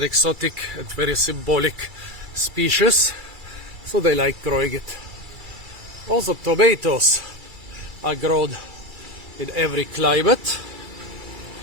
exotic and very symbolic species, so they like growing it. Also tomatoes are grown in every climate,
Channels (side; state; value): left; late; 2.3 ms